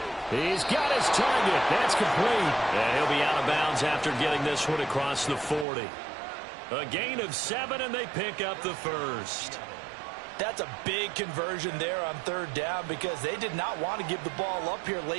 He's got his target. That's complete. And he'll be out of bounds after getting this one across the 40. A gain of 7, and they pick up the first. That's a big conversion there on third down because they did not want to give the ball up here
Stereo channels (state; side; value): drops out; left; at 5.7 s